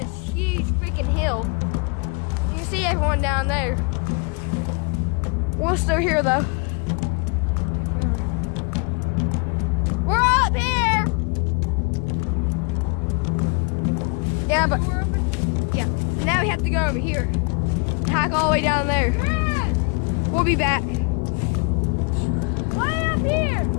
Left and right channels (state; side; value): quieter; right; 33.1 dB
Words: huge freaking hill. You can see everyone down there. We're still here though. We're up here! Yeah, but yeah. Now we have to go over here. Hike all the way down there. We'll be back. Why up here?